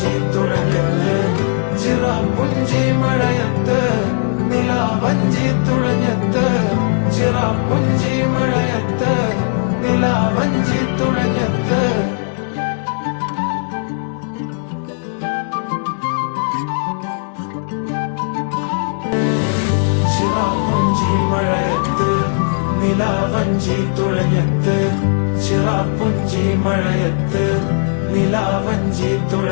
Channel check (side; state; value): right; silent; 68 dB below the other